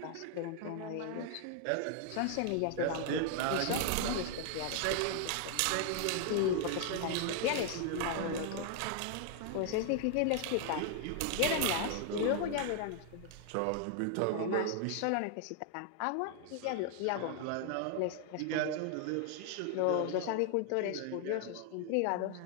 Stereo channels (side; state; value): both; different; correlation 0.00